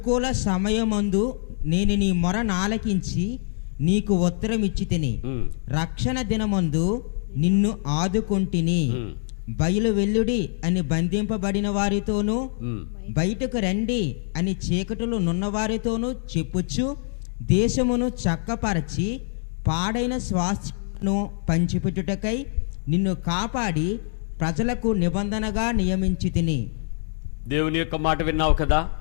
సమయమందు నేను నీ మొర నాలకించి నీకు ఉత్తరం ఇచ్చితిని. రక్షణ దినమందు నిన్ను ఆదుకొంటిని. బయలు వెల్లుడి అని బంధింపబడిన వారితోనూ బయటకు రండి అని చీకటిలో నున్నవారితోనూ చెప్పుచ్చు దేశమును చక్కపరచి పాడైన స్వాస్థ్యమును పంచిపెట్టుటకై నిన్ను కాపాడి ప్రజలకు నిబంధనగా నియమించి తిని. దేవుని యొక్క మాట విన్నావు కదా,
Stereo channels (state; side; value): silent; right; digital silence